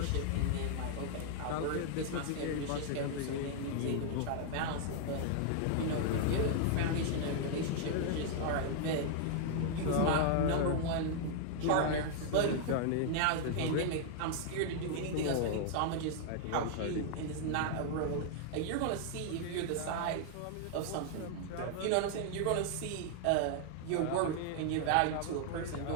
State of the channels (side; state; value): both; different; correlation -0.01